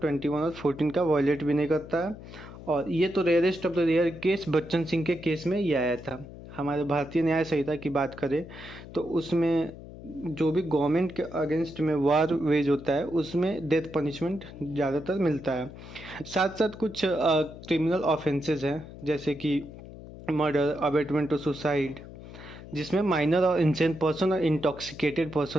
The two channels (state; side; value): noise; left; hum, 15 dB below the sound